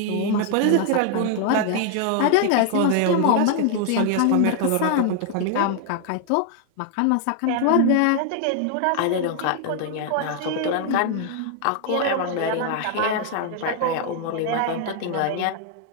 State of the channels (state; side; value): different; both; correlation 0.00